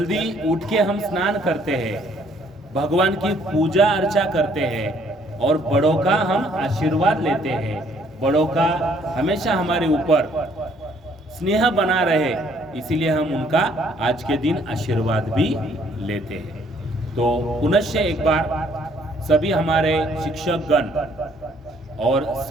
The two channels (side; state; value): both; normal; correlation 0.63